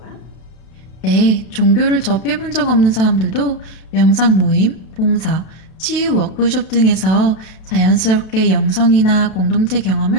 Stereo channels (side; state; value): right; late; 32 ms